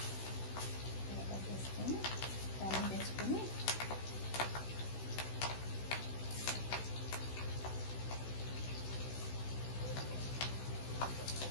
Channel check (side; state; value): right; late; 16 ms